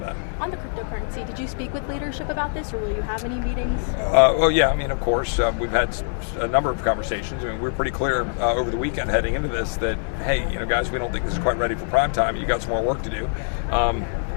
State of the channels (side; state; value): right; silent; digital silence